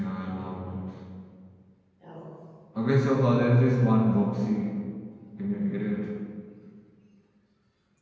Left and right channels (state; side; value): identical; both; correlation 1.00